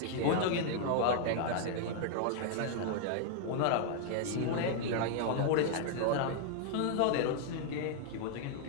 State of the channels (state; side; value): different; both; correlation 0.00